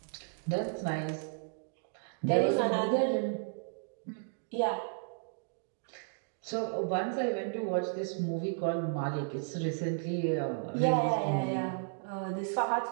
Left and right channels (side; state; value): left; silent; digital silence